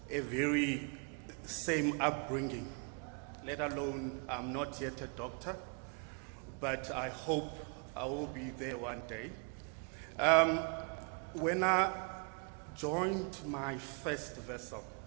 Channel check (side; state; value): left; quieter; 38.3 dB